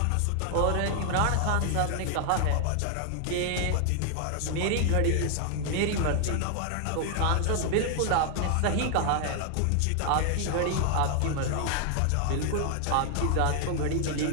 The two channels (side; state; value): both; different; correlation 0.00